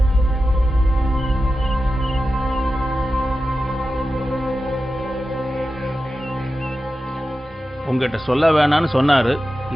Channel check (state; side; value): normal; both; correlation 0.92